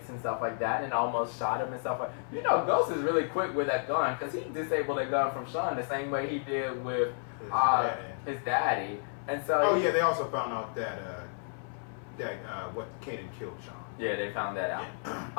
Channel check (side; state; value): right; silent; 57 dB below the other